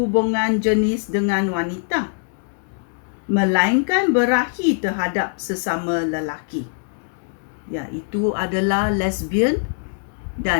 jenis dengan wanita, melainkan berahi terhadap sesama lelaki, iaitu adalah lesbian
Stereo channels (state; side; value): silent; right; digital silence